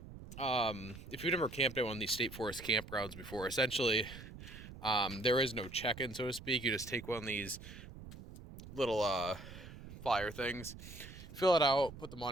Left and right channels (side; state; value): right; noise; rumble, 14 dB below the sound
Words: if you've never camped at one of these state forest campgrounds before, essentially there is no check-in, so to speak. You just take one of these little flyer things, fill it out, put the